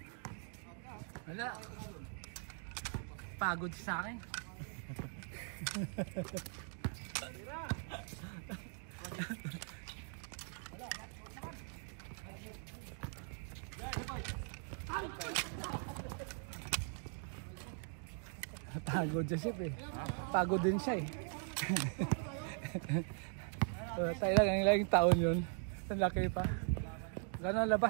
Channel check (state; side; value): silent; left; 51 dB below the other